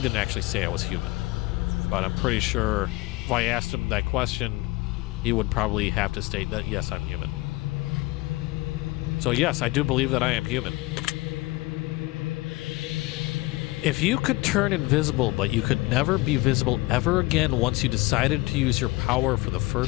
actually say I was human, but I'm pretty sure if I asked him that question, he would probably have to state that, yes, I'm human. So yes, I do believe that I am human. If you could turn invisible, but you could never be visible ever again once you decided to use your power for the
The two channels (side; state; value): right; quieter; 21.2 dB